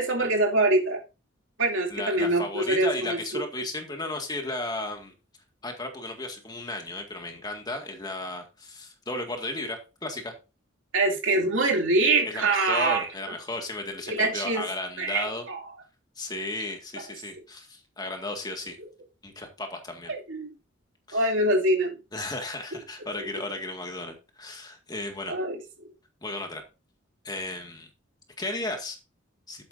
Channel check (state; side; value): normal; both; correlation 0.03